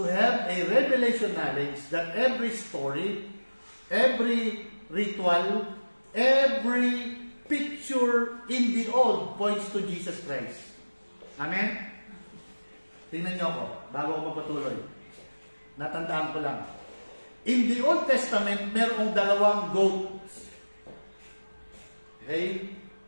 have a revelation knowledge that every story, every ritual, every picture in the old points to Jesus Christ. Amen? Tingnan niyo ako, bago ako magpatuloy. Natandaan ko lang. In the Old Testament, merong dalawang goats. Okay?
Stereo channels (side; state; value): both; inverted; correlation -1.00